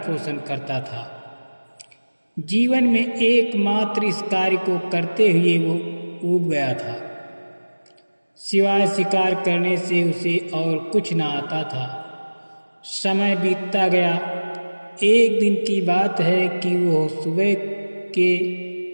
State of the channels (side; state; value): both; inverted; correlation -1.00